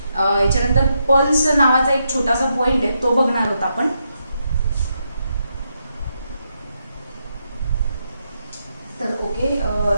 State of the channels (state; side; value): inverted; both; correlation -0.81